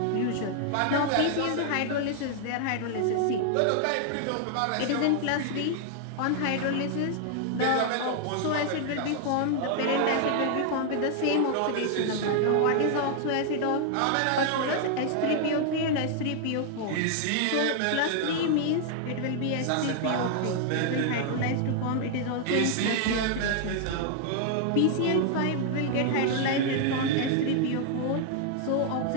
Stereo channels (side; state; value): both; different; correlation 0.00